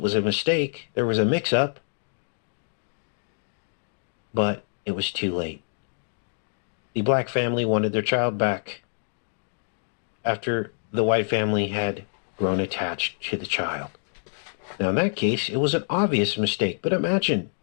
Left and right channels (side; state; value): right; silent; digital silence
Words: was a mistake. There was a mix-up. But it was too late. The black family wanted their child back after the white family had grown attached to the child. Now, in that case, it was an obvious mistake. But imagine